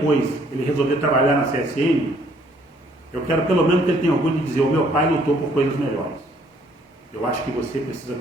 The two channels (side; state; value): both; normal; correlation 0.63